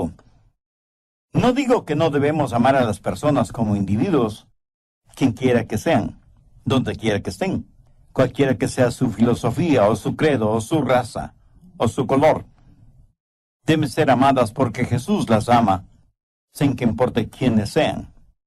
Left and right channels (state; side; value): identical; both; correlation 1.00